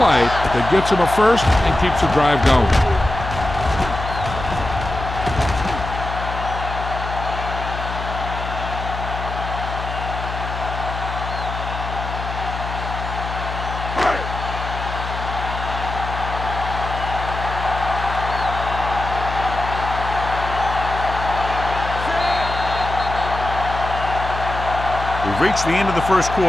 that gets them a first and keeps the drive going. We've reached the end of the first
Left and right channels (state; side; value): noise; left; hum, 7 dB below the sound